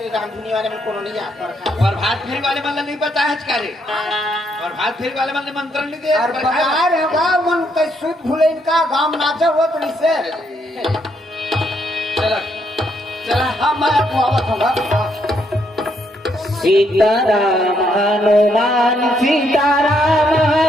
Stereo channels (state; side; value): normal; both; correlation 0.74